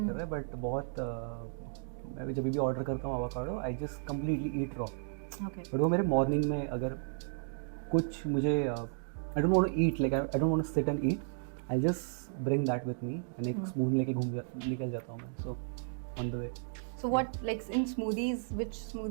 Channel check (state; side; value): silent; left; digital silence